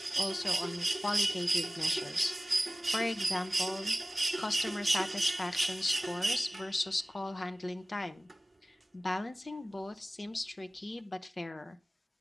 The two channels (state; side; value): normal; both; correlation 0.97